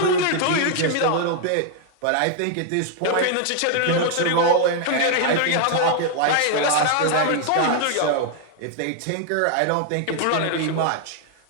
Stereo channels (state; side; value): different; both; correlation 0.00